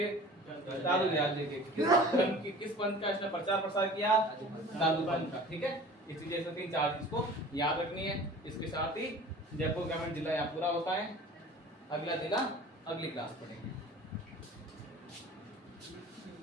दादू दयाल जी के। किस पंथ का इसने प्रचार प्रसार किया? दादूपंथ का। ठीक है, इस चीजें से 3-4 चीज को याद रखनी है। इसके साथ ही जयपुर ग्रामीण जिला यहाँ पूरा होता है। अगला जिला अगली क्लास पढ़ेंगे।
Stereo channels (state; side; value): normal; both; correlation 0.43